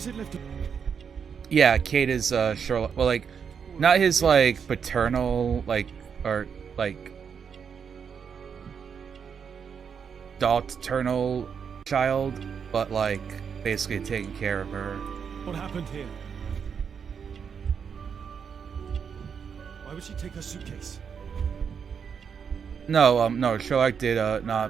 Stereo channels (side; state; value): left; quieter; 6.8 dB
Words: it left? Yeah, Kate is Sherlock. Well, like, not his like paternal, like, or like paternal child, but like basically taking care of her. What happened here? Why would she take her suitcase? No, no, Sherlock did